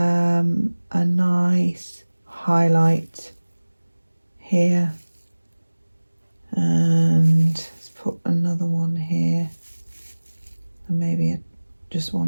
nice highlight here, and let's put another one here, and maybe just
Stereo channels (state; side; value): inverted; both; correlation -1.00